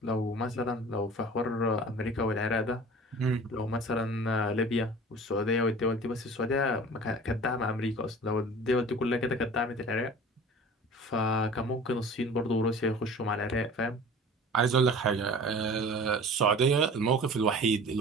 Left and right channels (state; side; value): normal; both; correlation 0.42